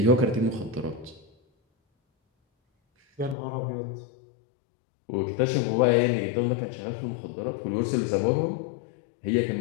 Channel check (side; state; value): right; drops out; at 3.4 s